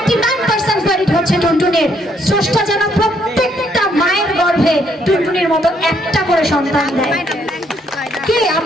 ক্রেডিট হচ্ছে টুনটুনির। স্রষ্টা যেন প্রত্যেকটা মায়ের গর্ভে টুনটুনির মতো একটা করে সন্তান দেয়। কি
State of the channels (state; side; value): normal; both; correlation 0.70